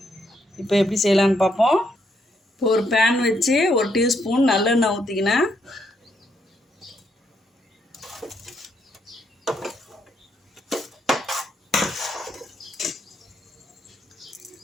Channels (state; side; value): normal; both; correlation 0.76